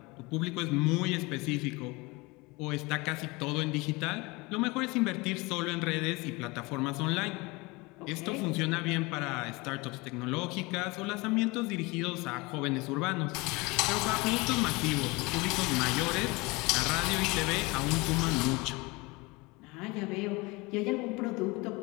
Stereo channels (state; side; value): quieter; right; 24.7 dB